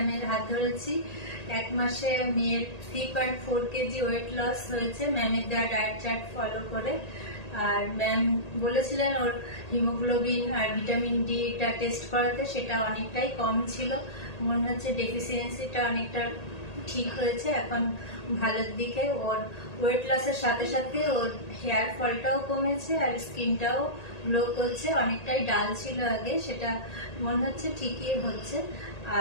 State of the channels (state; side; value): late; right; 1.8 ms